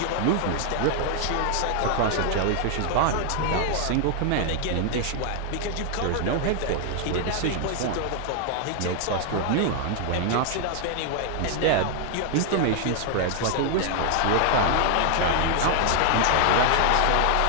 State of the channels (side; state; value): both; different; correlation 0.00